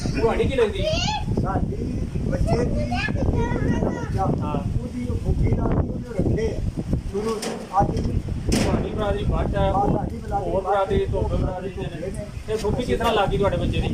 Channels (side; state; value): both; identical; correlation 1.00